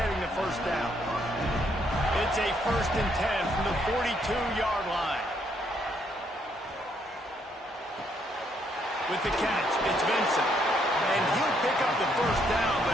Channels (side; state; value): both; normal; correlation 0.72